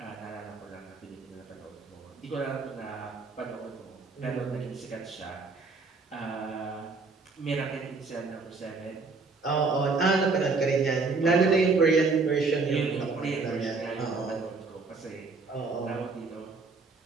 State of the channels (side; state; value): left; quieter; 4.1 dB